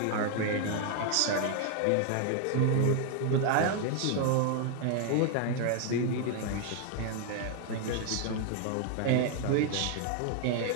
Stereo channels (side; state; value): both; different; correlation 0.00